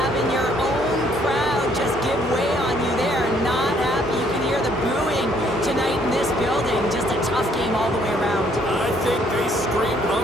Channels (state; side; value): normal; both; correlation 0.65